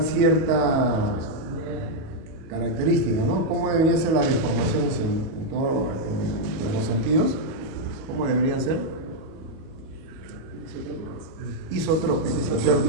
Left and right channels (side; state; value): left; late; 37 ms